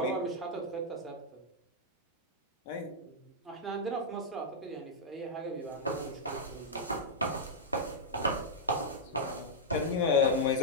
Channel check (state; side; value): normal; both; correlation -0.06